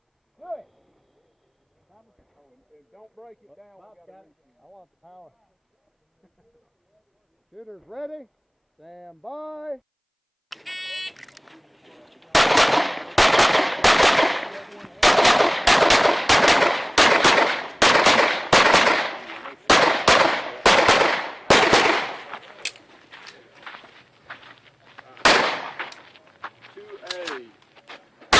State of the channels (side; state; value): both; identical; correlation 1.00